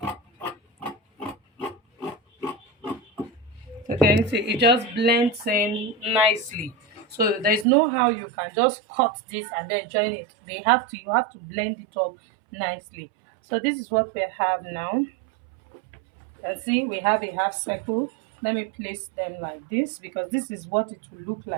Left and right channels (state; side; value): drops out; left; at 7.7 s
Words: So can you see it just blends in nicely. So there's no how you can just cut this and then join it. You have to blend it up nicely. So this is what we have now. And see, we have a half circle. Let me place them like this because this is what it will look